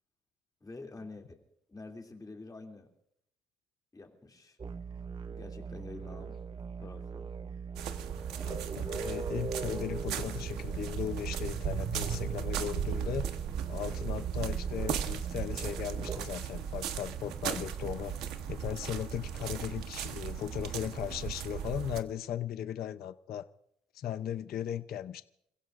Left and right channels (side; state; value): both; normal; correlation 0.50